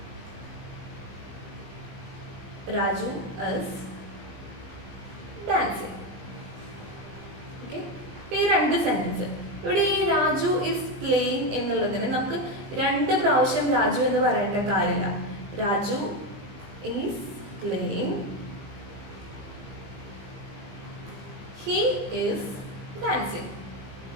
Raju is dancing. Okay, ഈ രണ്ട് സെന്റൻസ് ഇവിടെ ഈ രാജു ഇസ് പ്ലേയിങ് എന്നുള്ളതിന് നമുക്ക് രണ്ട് പ്രാവശ്യം രാജു എന്ന് പറയേണ്ട കാര്യമില്ല. Raju is playing, he is dancing.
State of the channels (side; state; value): left; late; 20 ms